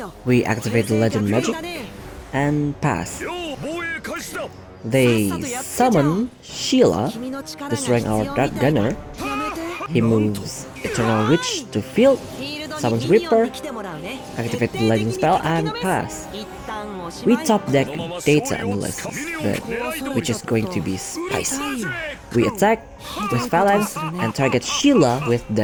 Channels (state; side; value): identical; both; correlation 1.00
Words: We activate the Legend Magic, and pass. They summon Sheila, destroying our Dark Gunner. He moves Eternal Witch to field, summons Reaper, activate the Legend spell, and pass. We top deck Data Analysis, but which is going to be spicy. We attack with Phalanx and target Sheila with